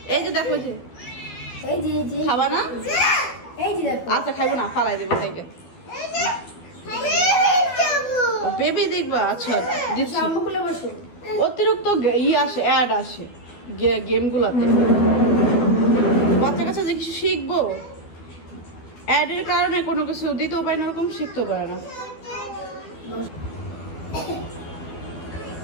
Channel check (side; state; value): right; late; 12 ms